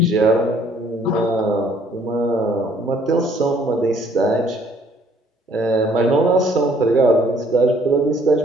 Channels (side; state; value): both; normal; correlation 0.61